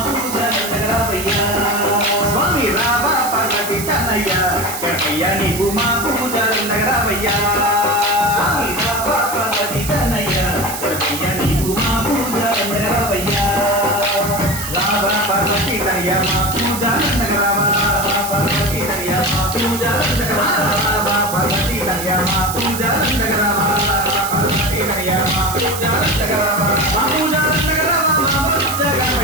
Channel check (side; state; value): right; noise; hiss, 7 dB below the sound